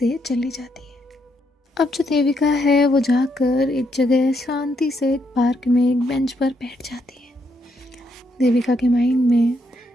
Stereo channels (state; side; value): normal; both; correlation 0.76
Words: चली जाती है। अब जो देविका है वो जाकर एक जगह शांति से एक पार्क में एक बेंच पर बैठ जाती है। देविका के माइंड में